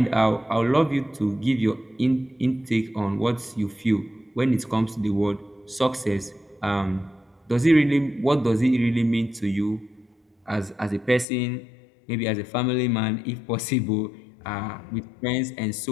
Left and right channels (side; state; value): right; drops out; at 11.2 s